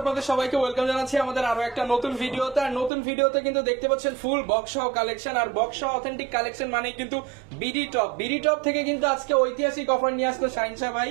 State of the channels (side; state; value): left; drops out; at 2.9 s